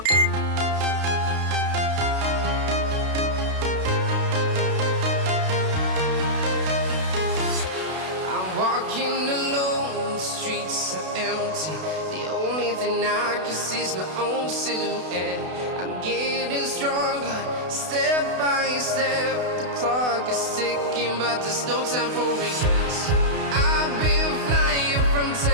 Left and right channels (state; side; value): late; left; 32 ms